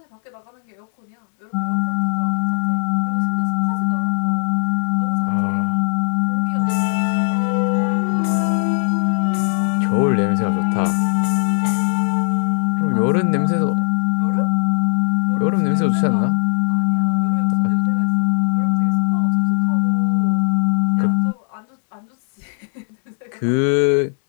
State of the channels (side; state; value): right; silent; 61 dB below the other